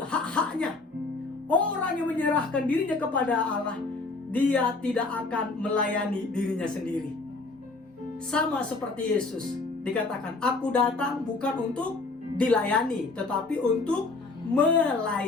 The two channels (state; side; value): quieter; right; 3.6 dB